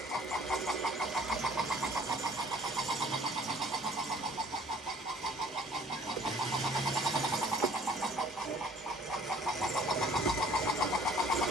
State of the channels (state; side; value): normal; both; correlation 0.54